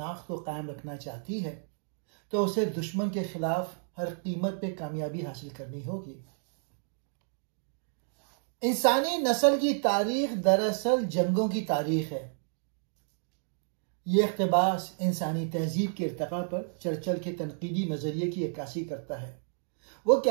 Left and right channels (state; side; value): silent; left; digital silence